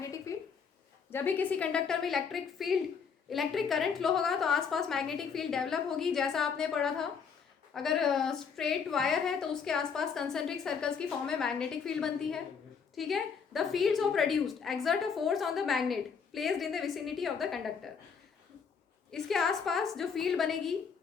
field. जब भी किसी कंडक्टर में इलेक्ट्रिक करंट फ्लो होगा तो आसपास मैग्नेटिक फील्ड डेवलप होगी। जैसा आपने पढ़ा था, अगर स्ट्रेट वायर है तो उसके आसपास कंसेंट्रिक सर्कल्स की फॉर्म में मैग्नेटिक फील्ड बनती है। ठीक है। The fields of produced exert a force on the magnet placed in the vicinity of the conductor. इसके आसपास जो फील्ड बनेगी,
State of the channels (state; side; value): quieter; right; 6.2 dB